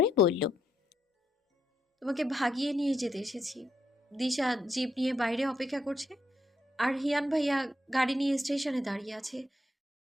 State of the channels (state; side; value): normal; both; correlation 0.78